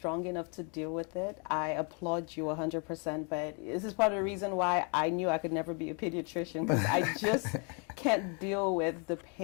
enough to deal with it. I applaud you 100%, but this is part of the reason why I knew I could never be a pediatrician, because I just can't deal with the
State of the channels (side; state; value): right; quieter; 36.5 dB